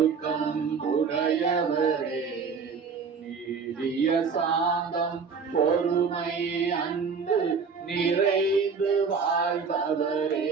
உடையவரே நீடிய சாந்தம் பொறுமை அன்பு நிறைந்து வாழ்பவரே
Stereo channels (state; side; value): quieter; left; 5.5 dB